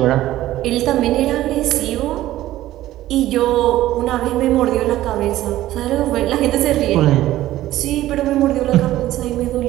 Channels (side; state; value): left; quieter; 14.7 dB